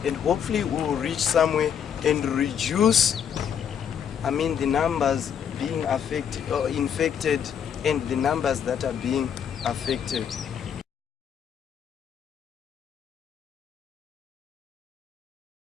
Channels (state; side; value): quieter; right; 8.2 dB